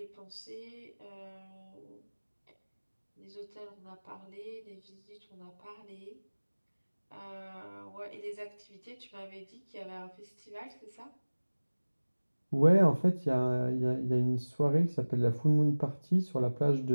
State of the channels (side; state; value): both; inverted; correlation -1.00